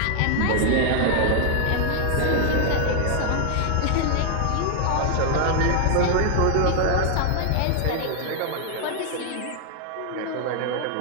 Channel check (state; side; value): different; both; correlation 0.00